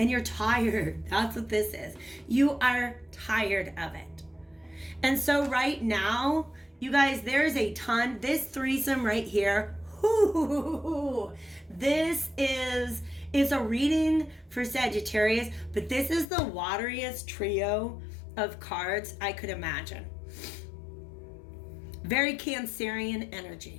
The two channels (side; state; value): right; drops out; at 16.2 s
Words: you're tired. That's what this is. You are tired of it. And so right now, you guys, there's a ton. This threesome right here. This is a reading for Sagittarius, but this is the wateriest trio of cards I could imagine. Very Cancerian